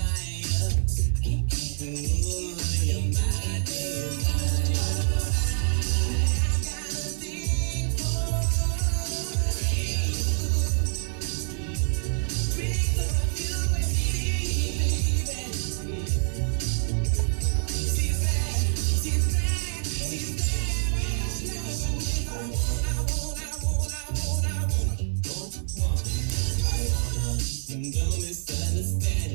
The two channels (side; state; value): left; silent; 59 dB below the other